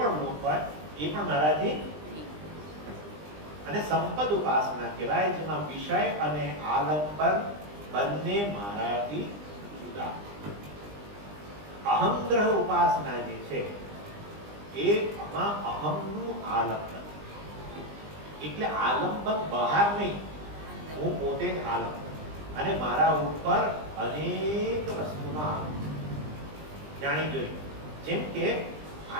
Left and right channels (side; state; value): left; late; 20 ms